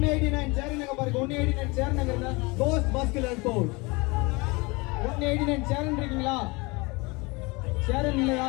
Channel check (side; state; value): right; quieter; 26.1 dB